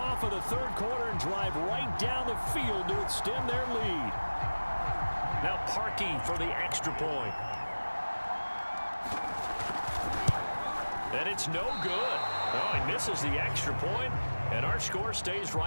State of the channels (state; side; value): inverted; both; correlation -1.00